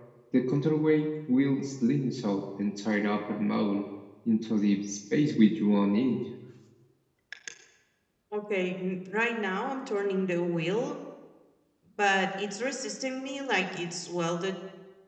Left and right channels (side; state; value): both; identical; correlation 1.00